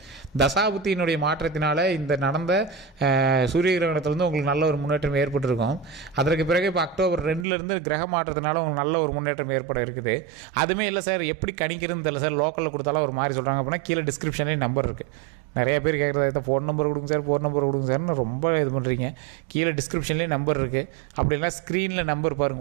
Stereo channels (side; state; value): left; drops out; at 7.5 s